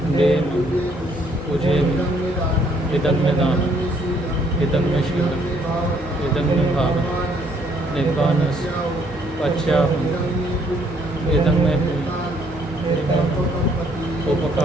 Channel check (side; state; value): both; normal; correlation 0.66